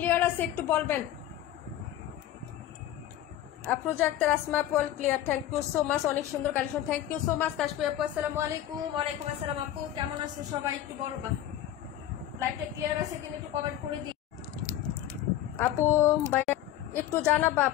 আছে একটু বলবেন। আফরোজা আক্তার, আসমা আপু clear, thank you so much, অনেক সুন্দর collection, thank you so much. Kashfi আপু আসসালামু আলাইকুম। ওয়ালাইকুম আসসালাম আপু, কেমন আছো সবাই একটু বলবা। লাইভটা ক্লিয়ার আছে কিনা একটু কমেন্ট করে দিই আপু। ভাইয়া একটু জানাবা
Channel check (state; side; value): quieter; right; 12.5 dB